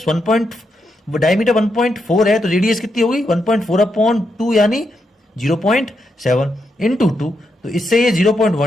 1. डायमीटर 1.4 है, तो रेडियस कितनी होगी 1.4/2 यानी 0.7 इंटू 2। तो इससे ये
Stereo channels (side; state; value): both; normal; correlation 0.83